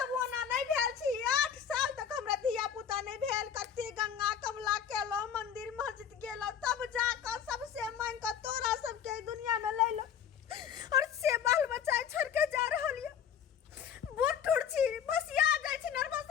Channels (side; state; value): right; quieter; 8.4 dB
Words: ओना नहीं भेल छी। 8 साल तक हमरा धिया पुता नहीं भेल कते गंगा कमला केलो मंदिर मस्जिद गेलो तब जाकर सबसे मांग कर तोरा सबके दुनिया में ले लो और से बाल बच्चा छोड़ के जा रहल ये बूढ़ टूट छी बस आ जाय छी